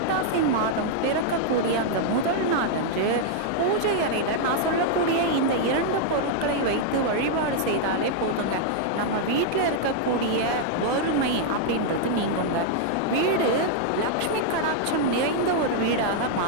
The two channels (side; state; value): both; different; correlation -0.01